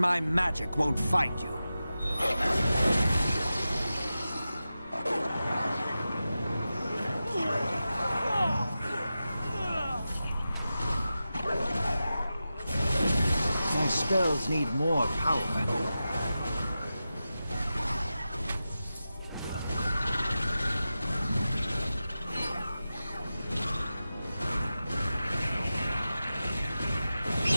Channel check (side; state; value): both; inverted; correlation -0.93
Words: magic won't find you. My spells need more power.